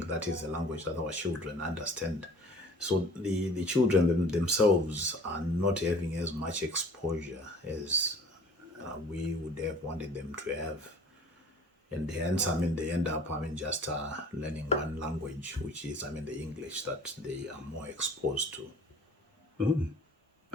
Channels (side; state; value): both; normal; correlation 0.48